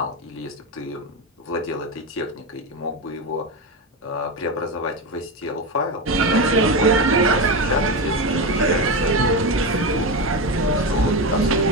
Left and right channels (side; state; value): both; normal; correlation 0.16